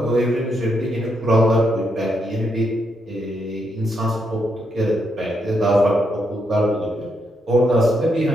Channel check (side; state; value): both; normal; correlation 0.79